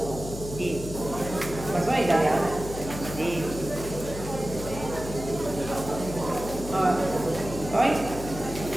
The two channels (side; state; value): left; noise; hum, 9 dB below the sound